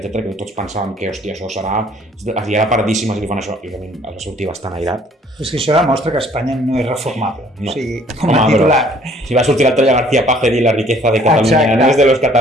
que tots pensàvem que, hòstia, això serà... Arribarà paradíssima si li fan això, i realment ha de sortir bastant airat. És que això demostra que Espanya no és reformable. No. O sigui, com a titular. Si va sortir l'altre García Page a dir la riqueza de Catalunya, no és de los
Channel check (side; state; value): both; normal; correlation 0.58